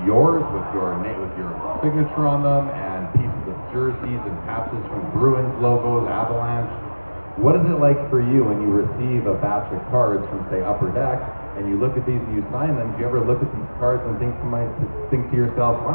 yours with your name, with your signature on them, and pieces of jerseys and patches from Bruins logos, Avalanche. What is it like for you when you receive a batch of cards from, say, Upper Deck, and you look at these and you sign them? Do you ever look at these cards and think to yourself,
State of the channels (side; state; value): both; inverted; correlation -1.00